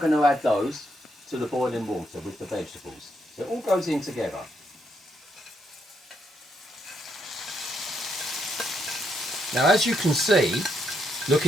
to add those to the boiling water with the vegetables. So it all goes in together. Now, as you can see,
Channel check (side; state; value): both; normal; correlation 0.77